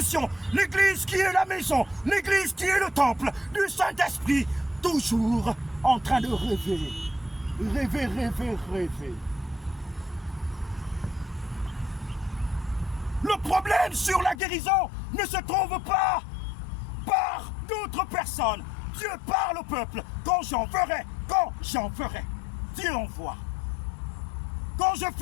L'Église qui est la maison, l'Église qui est le temple du Saint-Esprit, toujours en train de rêver. Rêver, rêver, rêver. Le problème sur la guérison ne se trouve pas par d'autres personnes. Dieu parle au peuple. Quand j'en ferai, Dieu envoie. Quand je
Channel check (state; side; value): drops out; right; at 14.4 s